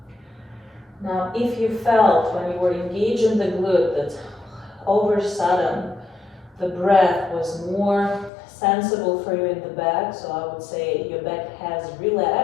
Now, if you felt when you were engaged in the glute that over sudden the breath was more sensible for you in the back, so I would say your back has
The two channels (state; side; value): drops out; right; at 8.3 s